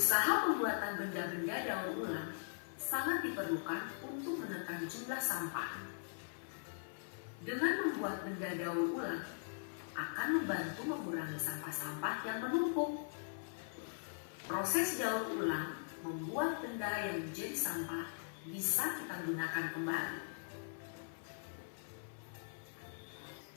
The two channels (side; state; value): right; silent; 51 dB below the other